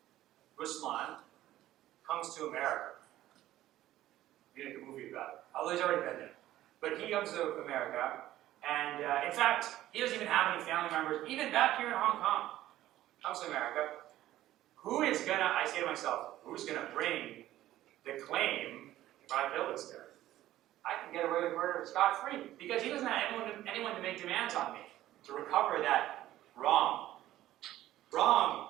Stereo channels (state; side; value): quieter; left; 14.2 dB